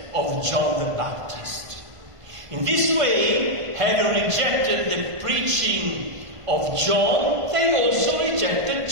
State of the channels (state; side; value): late; left; 1.5 ms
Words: of John the Baptist. In this way, having rejected the preaching of John, they also rejected